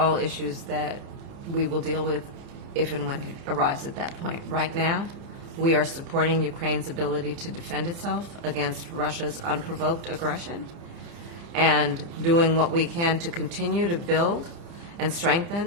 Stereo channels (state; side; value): late; left; 30 ms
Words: issues that we will deal with if and when it arrives at that point. Right now, we are supporting Ukraine's ability to defend itself against Russia's unprovoked aggression and doing what we can to continue to build and strengthen